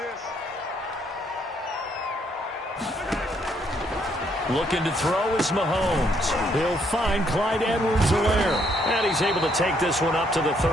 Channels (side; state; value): both; normal; correlation 0.70